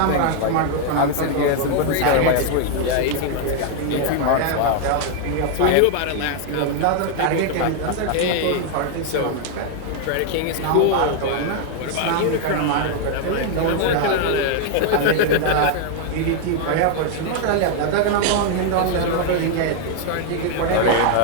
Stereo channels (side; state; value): both; different; correlation 0.00